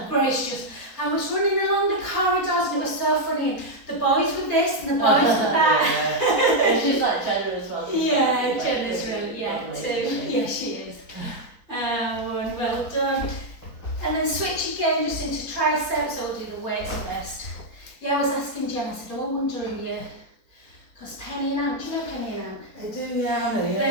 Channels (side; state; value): right; late; 4.3 ms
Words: Grace just, I was running along the corridors and it was so funny. The boys were this and the boys were that. And she's like Jenna as well. Yeah, Jenna's really, yeah, too. Yeah, she is. Well done. And then switch again just into triceps, or do the weights first. Yeah, I was asking Jen, I said, oh, I wonder if you, because Penny and Ant, do you know Penny and Ant? I do, yeah, I know, yeah.